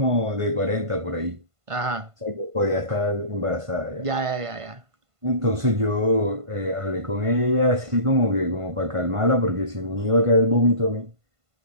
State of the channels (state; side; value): late; left; 1.5 ms